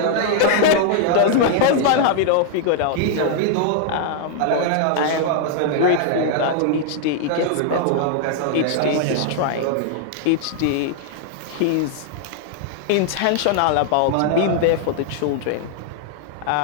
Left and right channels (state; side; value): different; both; correlation 0.00